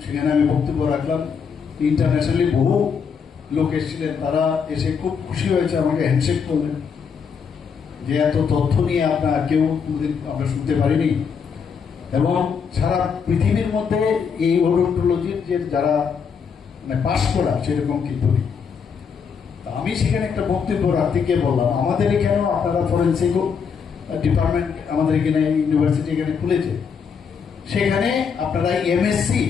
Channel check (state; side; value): quieter; right; 6.4 dB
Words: সেখানে আমি বক্তব্য রাখলাম, ইন্টারন্যাশনালি বহু লোক এসেছিলেন, তারা এসে খুব খুশি হয়েছে, আমাকে হ্যান্ডশেক করলেন যে এত তথ্য নিয়ে আপনার কেউ আমরা শুনতে পারিনি। এবং সারা পৃথিবীর মধ্যে এই ওডোন্টোলজির যে যারা মানে পাশ করা সেরকম কিন্তু নেই। আমি সেখানে একটা বক্তব্য রাখতে গিয়ে বললাম, আমাদের এখানেও আপনারা ফরেন্সিক ডিপার্টমেন্ট আমাদের এখানে ইউনিভার্সিটি এখানে খুলেছে, সেখানে আপনারা এমএসসি